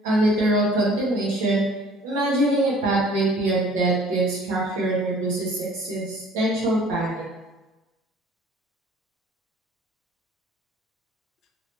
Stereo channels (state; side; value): normal; both; correlation 0.52